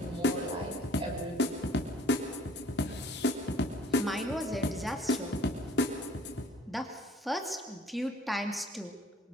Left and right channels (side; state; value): both; normal; correlation 0.53